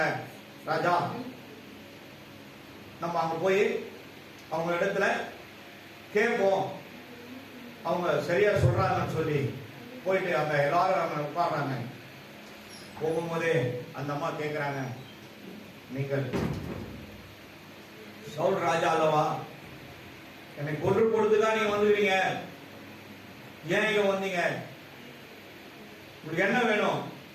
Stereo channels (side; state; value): both; identical; correlation 1.00